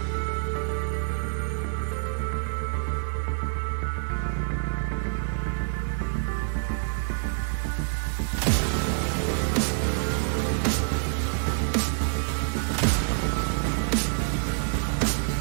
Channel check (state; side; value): silent; left; digital silence